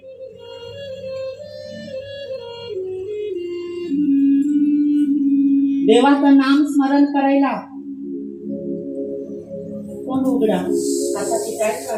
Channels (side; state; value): both; identical; correlation 1.00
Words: देवाचं नाम स्मरण करायला कोण उघडा हाताची टाळी